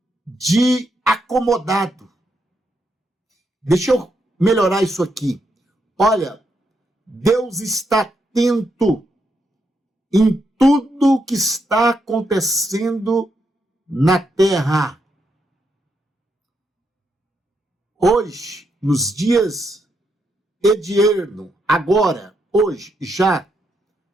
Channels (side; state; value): both; normal; correlation 0.80